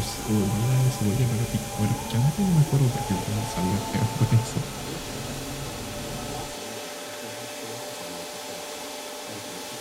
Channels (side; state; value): both; identical; correlation 1.00